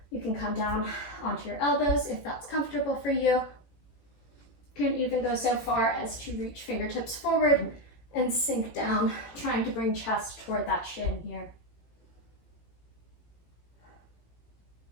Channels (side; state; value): right; late; 18 ms